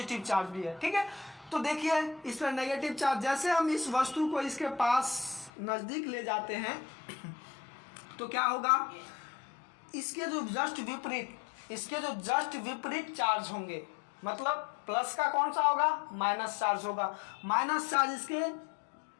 चार्ज भी है। ठीक है, तो देखिए इस पर नेगेटिव चार्ज, जैसे हम इस वस्तु को इसके पास नज़दीक ले जाते हैं तो क्या होगा, इसके जो जस्ट विपरीत चार्ज होंगे। मतलब प्लस का कौन सा होगा, माइनस चार्ज होगा। माइनस चार्ज इसके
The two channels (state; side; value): drops out; right; at 5.5 s